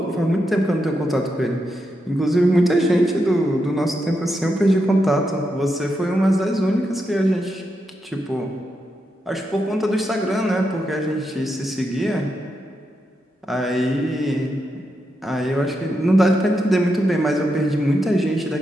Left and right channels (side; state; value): both; normal; correlation 0.84